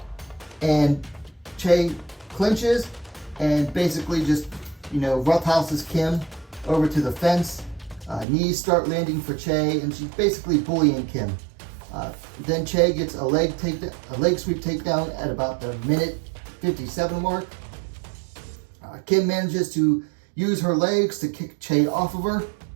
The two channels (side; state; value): left; drops out; at 8.2 s